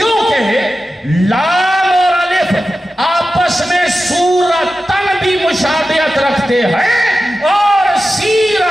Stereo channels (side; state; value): both; normal; correlation 0.93